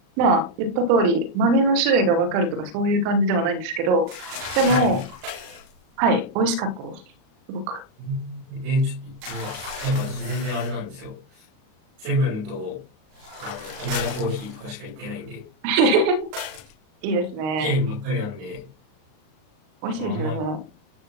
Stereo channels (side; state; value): left; late; 38 ms